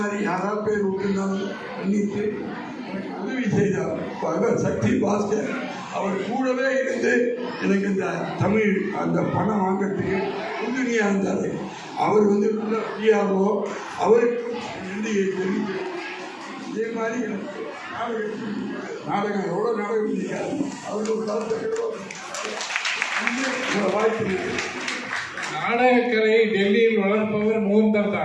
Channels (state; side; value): identical; both; correlation 1.00